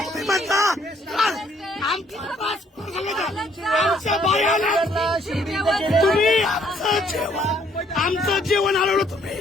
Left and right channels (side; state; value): both; normal; correlation 0.65